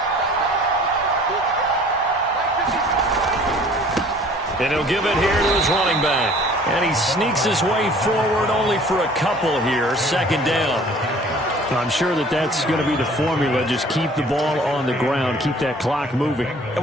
And he'll give it here to his running back. And he sneaks his way forward only for a couple here. 2nd down. I'm sure that that's going to be the formula. Just keep the ball on the ground. Keep that clock moving. And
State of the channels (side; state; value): both; normal; correlation 0.51